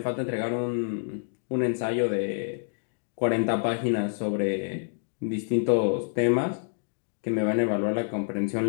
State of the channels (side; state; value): right; silent; digital silence